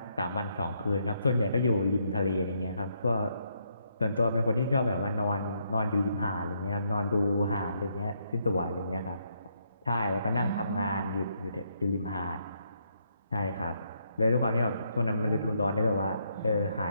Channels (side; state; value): both; inverted; correlation -0.75